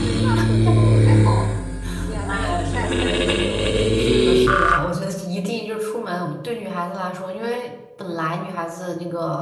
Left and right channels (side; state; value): both; identical; correlation 1.00